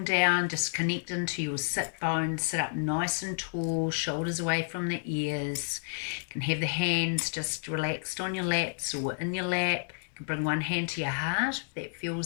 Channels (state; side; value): silent; right; digital silence